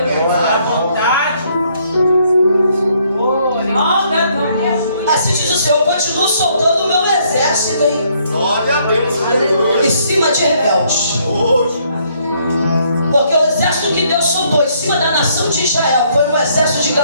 assim diz o Senhor, eu continuo soltando o meu exército aí. Glória a Deus. Em cima de rebeldes. Porque o exército que Deus soltou em cima da nação de Israel foi um exército de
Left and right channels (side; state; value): both; inverted; correlation -0.68